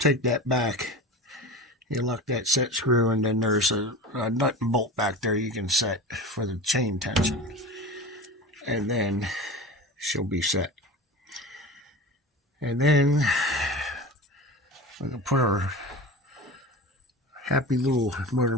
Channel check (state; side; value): normal; both; correlation 0.32